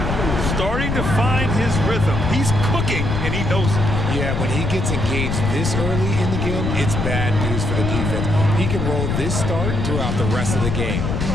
Starting to find his rhythm. He's cooking, and he knows it. Yeah, when he gets engaged this early in the game, it's bad news for the defense. He can roll this start throughout the rest of the game.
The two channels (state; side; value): noise; left; rumble, 1 dB below the sound